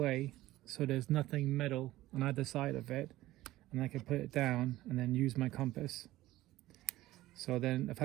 so there's nothing metal on either side of it, and I can put it down and then use my compass. So then if I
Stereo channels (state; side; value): quieter; left; 16.4 dB